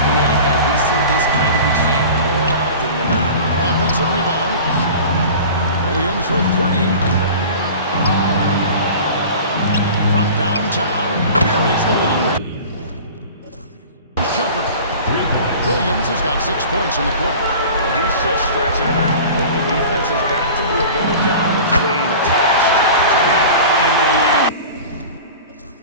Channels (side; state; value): both; inverted; correlation -0.38